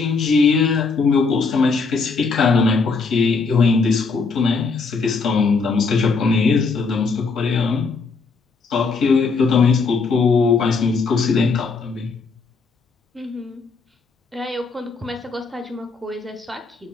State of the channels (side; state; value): right; quieter; 4.5 dB